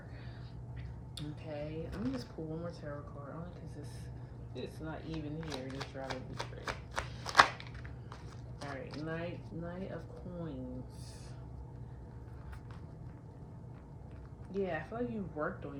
Okay, let me just pull one more tarot card, only because it's not even here. Just rather be straight. All right, Knight of Coins. Yeah, I feel like you've worked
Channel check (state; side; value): identical; both; correlation 1.00